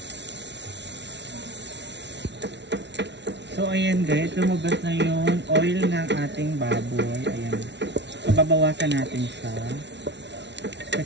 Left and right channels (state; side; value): late; left; 0.51 ms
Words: So, ayan guys, lumabas na yung oil ng ating baboy. Ayan. So, babawasan natin siya.